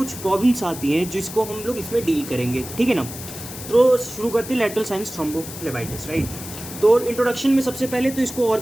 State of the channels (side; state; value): left; noise; hiss, 11 dB below the sound